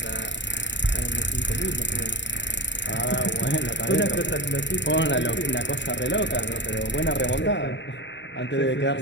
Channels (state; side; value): late; right; 0.52 ms